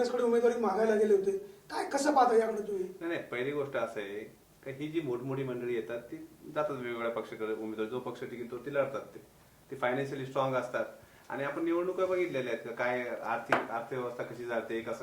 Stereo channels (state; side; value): identical; both; correlation 1.00